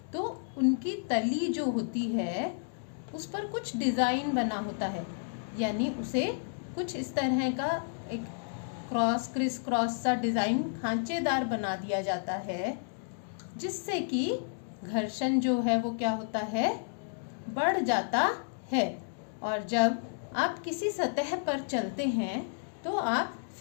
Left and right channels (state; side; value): silent; right; digital silence